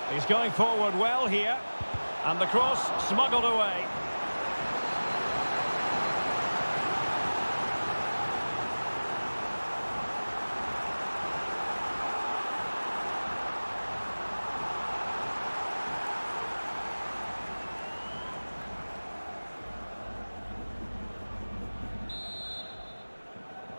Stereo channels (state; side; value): inverted; both; correlation -1.00